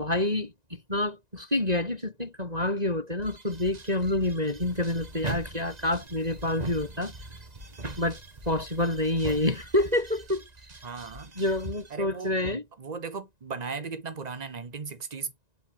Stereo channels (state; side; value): late; left; 1.9 ms